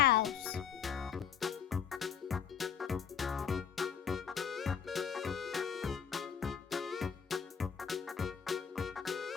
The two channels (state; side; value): quieter; right; 7.6 dB